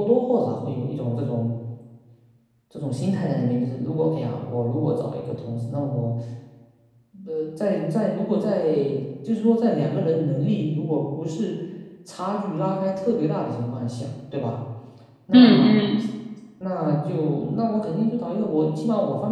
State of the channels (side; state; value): both; identical; correlation 1.00